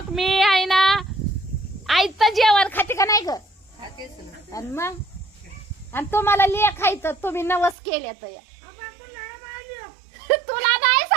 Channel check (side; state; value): left; drops out; at 7.8 s